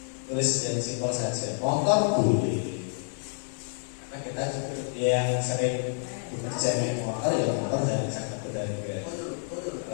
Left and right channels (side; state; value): right; silent; digital silence